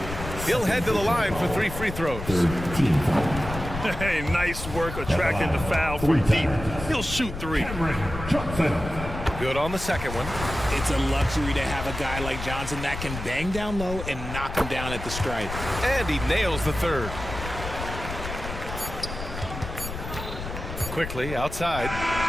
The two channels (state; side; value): noise; left; rumble, 8 dB below the sound